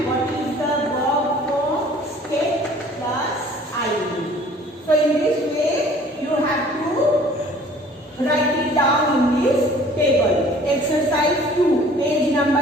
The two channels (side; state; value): both; normal; correlation 0.52